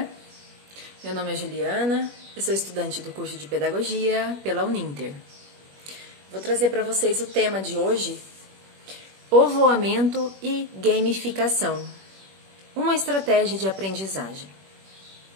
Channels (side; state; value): left; late; 21 ms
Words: Meu nome é Juliana, eu sou estudante do curso de Pedagogia pela Uninter. Vou trazer para vocês o tema de hoje: povoamento e gamificação, uma estratégia de aprendizagem.